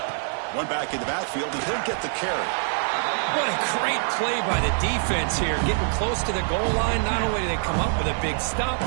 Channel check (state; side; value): silent; left; digital silence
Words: One back in the backfield, and he'll get the carry. What a great play by the defense here. Getting close to the goal line, not only do they come up with a big stop,